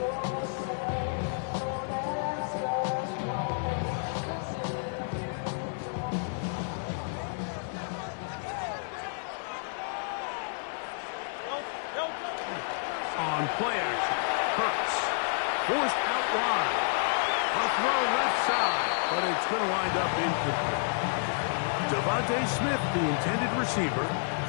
On play action, Hurts forced out wide. A throw left side, but it's going to wind up incomplete. Devontae Smith, the intended receiver,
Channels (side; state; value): right; silent; digital silence